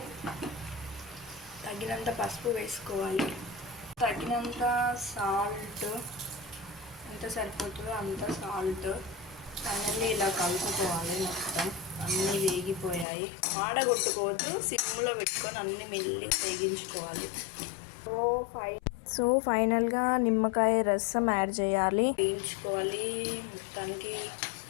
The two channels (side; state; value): right; drops out; at 13.1 s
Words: తగినంత పసుపు వేసుకోవాలి. తగినంత సాల్ట్, ఎంత సరిపోతుందో అంత సాల్ట్. ఫైనల్లీ ఇలా కలుపుకోవాలి. మొత్తం అన్నీ వేగిపోయాయి. ఆడగొట్టుకోవద్దు, సిమ్లో పెట్టుకొని అన్నీ మెల్లి వేగించుకోవాలి. సో ఫైనల్గా నిమ్మకాయ రసం యాడ్ చేయాలి, వేయించుకోవాలి. మొత్తానికి